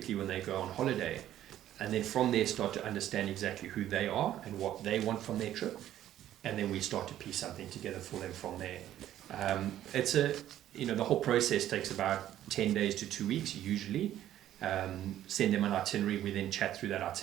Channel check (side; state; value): left; quieter; 12.3 dB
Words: when they go on holiday? And then from there start to understand exactly who they are and what they want from their trip. And then we start to piece something together for them from there. The whole process takes about 10 days to 2 weeks usually. Send them an itinerary. We then chat through that